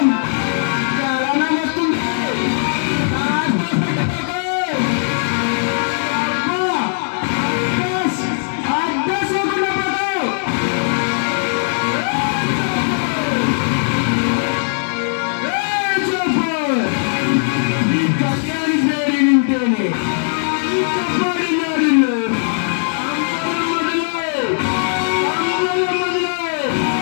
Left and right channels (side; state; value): right; silent; digital silence